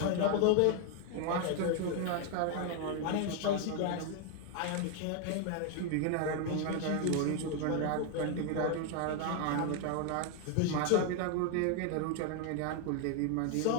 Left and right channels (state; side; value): different; both; correlation 0.01